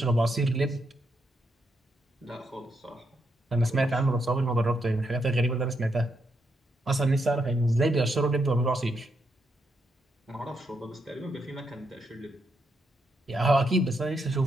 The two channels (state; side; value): normal; both; correlation 0.80